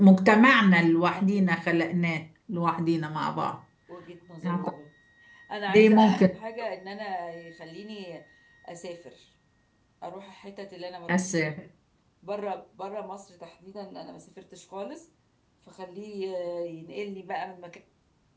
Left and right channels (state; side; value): identical; both; correlation 1.00